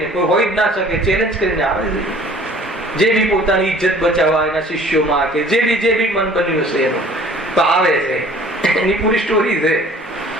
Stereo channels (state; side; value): normal; both; correlation 0.51